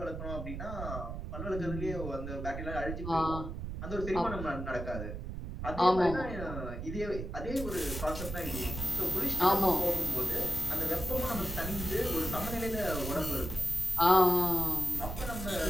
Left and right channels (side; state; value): right; noise; rumble, 6 dB below the sound